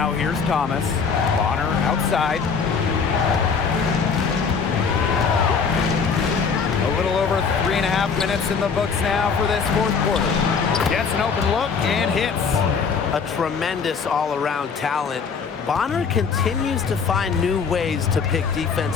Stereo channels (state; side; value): quieter; right; 5.7 dB